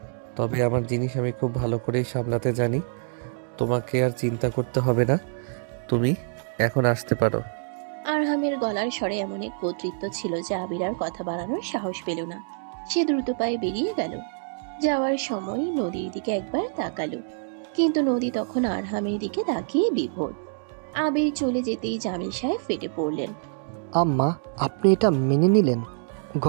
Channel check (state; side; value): silent; left; digital silence